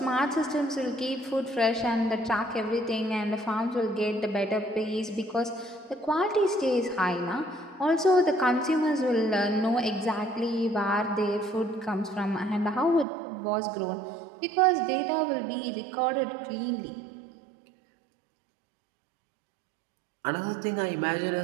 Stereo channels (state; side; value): drops out; left; at 13.1 s